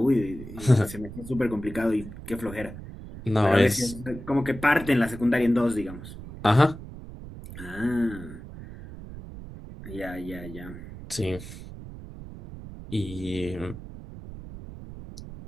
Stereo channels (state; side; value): noise; right; rumble, 13 dB below the sound